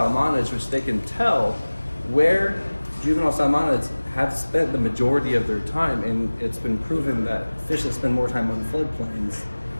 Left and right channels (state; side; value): inverted; both; correlation -1.00